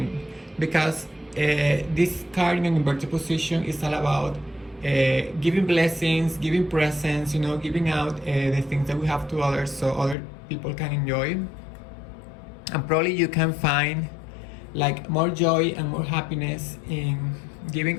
because this card in an inverted position is all about giving blessings, giving presents, giving out the things that we have to others so other people can enjoy. And probably you can find like more joy and more happiness in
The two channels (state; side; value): drops out; right; at 10.2 s